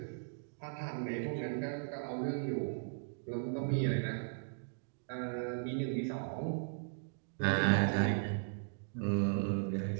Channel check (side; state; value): left; silent; digital silence